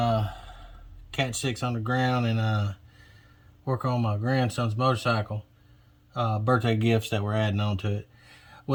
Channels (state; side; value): identical; both; correlation 1.00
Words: Cat 6 underground and work on my grandson's motorcycle birthday gifts that we're adding on to it.